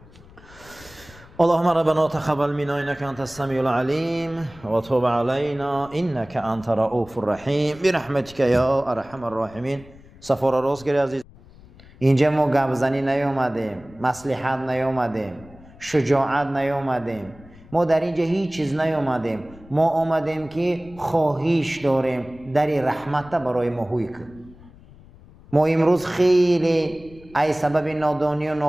اللهم ربنا تقبل منا انك انت السميع العليم وتوب علينا انك انت رؤوف الرحيم برحمتك يا ارحم الراحمين. سفر راست گیری عزیز، اینجا ما گپزنی نیومدیم، مصلحت نیومدیم، شجاعت نیومدیم، ما در اینجا هیچ چیز نیومدیم. ما آمدیم که خواهش داریم در رحمت برای ما هوی کن. ما امروز خیلی ای سبب نادانی و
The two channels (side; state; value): left; noise; rumble, 22 dB below the sound